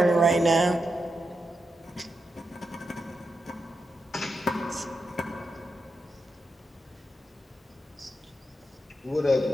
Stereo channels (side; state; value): both; normal; correlation 0.87